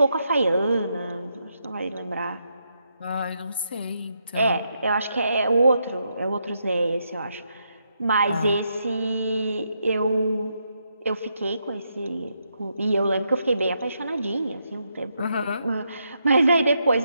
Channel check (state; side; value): inverted; both; correlation -0.80